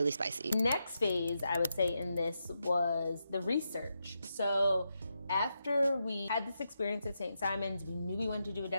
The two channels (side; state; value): both; inverted; correlation -0.85